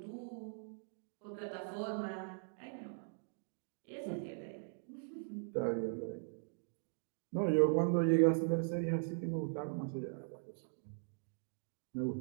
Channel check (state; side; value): silent; left; digital silence